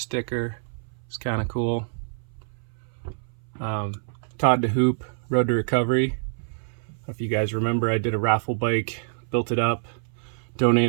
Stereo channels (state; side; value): silent; left; 59 dB below the other